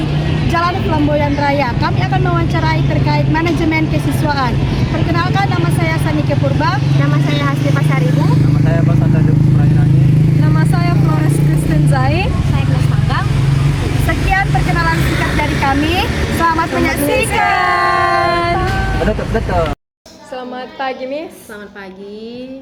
Jalan Flamboyan Raya. Kami akan mewawancarai terkait manajemen kesiswaan. Perkenalkan, nama saya Sanike Purba. Nama saya Hasri Pasaribu. Nama saya Bas Ataduk Prairani. Nama saya Flores Kristen Zai. Saya Gles Panggang. Sekian perkenalan singkat dari kami. Selamat menyaksikan. Betul. Selamat pagi, Miss. Selamat pagi.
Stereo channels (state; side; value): identical; both; correlation 1.00